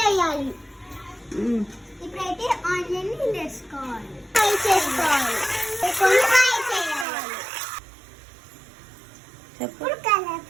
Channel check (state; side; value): drops out; left; at 7.1 s